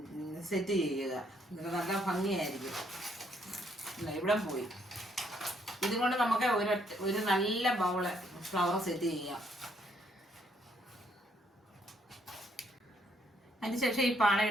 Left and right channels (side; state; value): both; normal; correlation 0.70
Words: സെറ്റ് ചെയ്യുക. എന്നിട്ട് നല്ല ഭംഗിയായിരിക്കും. ഇവിടെ പോയി ഇതുകൊണ്ട് നമുക്ക് ഒരു നല്ല ബൗള് ഫ്ലവർ സെറ്റ് ചെയ്യാം. അതിനുശേഷം ഈ